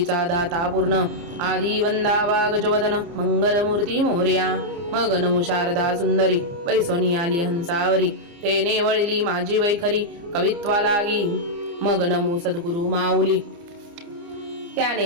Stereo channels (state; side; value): late; left; 30 ms